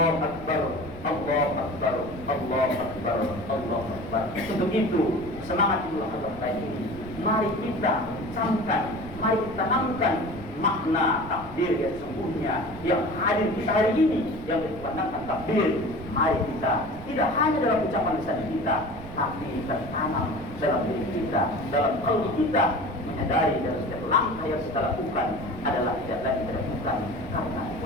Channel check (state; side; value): noise; right; rumble, 14 dB below the sound